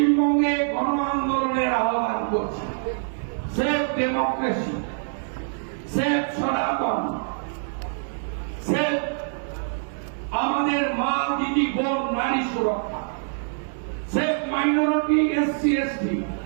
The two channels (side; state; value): left; silent; digital silence